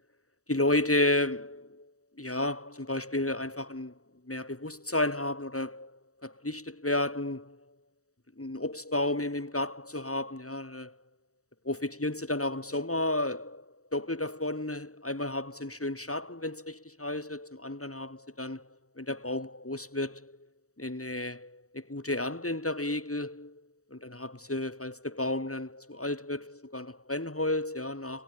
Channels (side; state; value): right; late; 0.65 ms